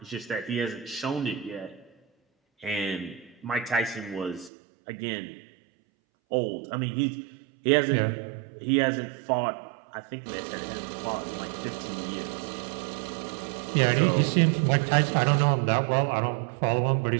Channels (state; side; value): drops out; left; at 4.5 s